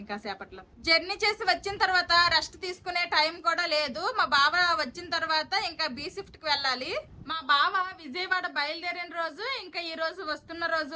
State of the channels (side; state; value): both; identical; correlation 1.00